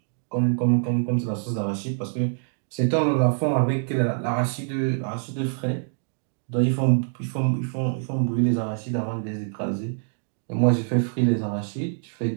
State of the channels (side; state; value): left; silent; digital silence